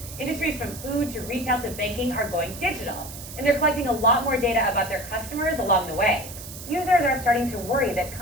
Industries from food to retail to banking are going digital, and they're collecting a lot more data about their customers along the way. Users are starting to worry that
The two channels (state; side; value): noise; right; hiss, 13 dB below the sound